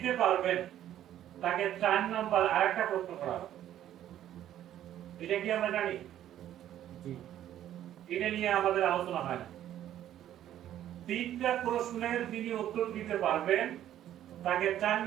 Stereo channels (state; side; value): quieter; left; 11.7 dB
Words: পারবেন তাকে 4 নাম্বার আরেকটা প্রশ্ন করা হবে। এটা কি আমরা জানি? এটা নিয়ে আমাদের আলোচনা হয় না। তিনটা প্রশ্নের যিনি উত্তর দিতে পারবেন তাকে 4